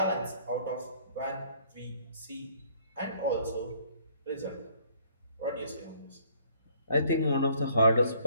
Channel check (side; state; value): both; inverted; correlation -0.62